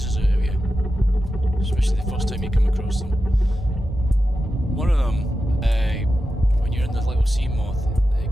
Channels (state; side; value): normal; both; correlation 0.91